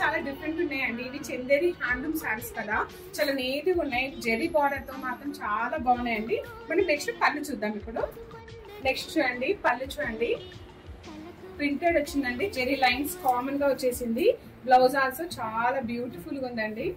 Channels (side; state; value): both; identical; correlation 1.00